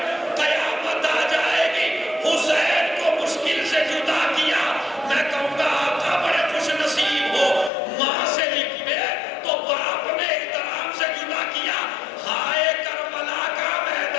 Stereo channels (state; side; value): drops out; right; at 7.7 s